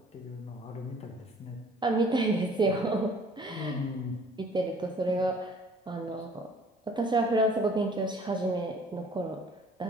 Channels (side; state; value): both; normal; correlation 0.53